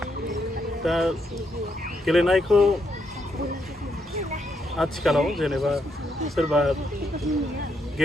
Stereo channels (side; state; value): both; normal; correlation 0.78